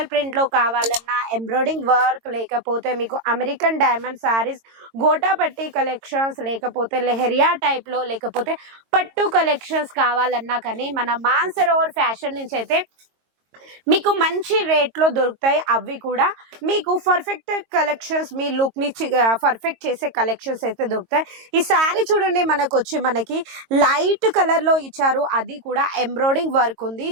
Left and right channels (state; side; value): late; left; 22 ms